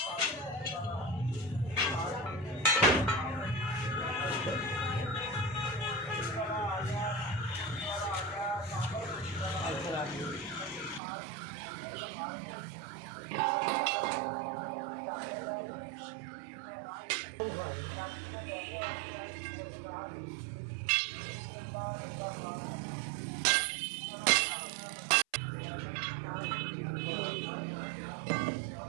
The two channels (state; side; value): drops out; left; at 11.0 s